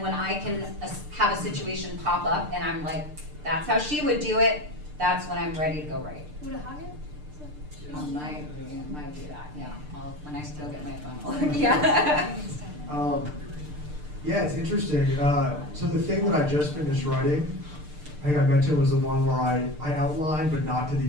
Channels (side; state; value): left; late; 6.7 ms